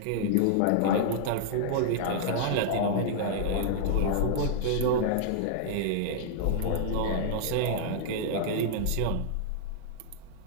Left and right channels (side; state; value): both; different; correlation -0.01